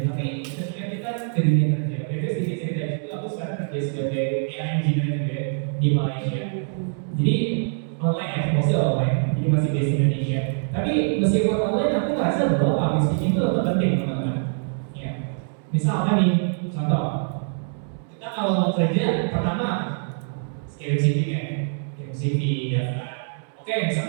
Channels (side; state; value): left; silent; 62 dB below the other